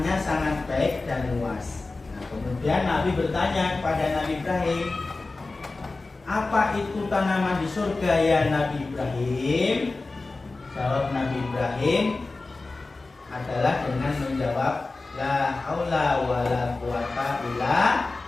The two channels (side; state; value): right; quieter; 3.5 dB